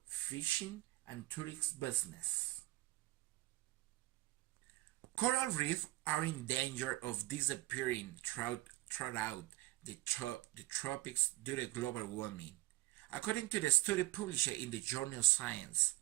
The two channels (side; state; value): left; quieter; 18.7 dB